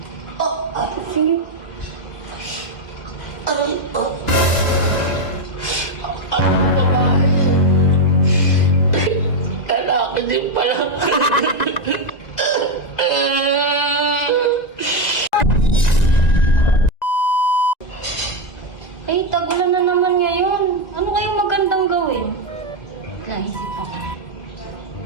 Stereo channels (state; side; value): late; right; 1.9 ms